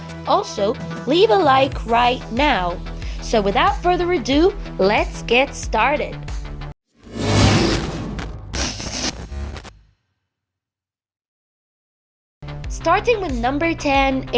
Also, leave a like right now. So without further ado, let's get started. Starting with number 10,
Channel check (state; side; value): identical; both; correlation 1.00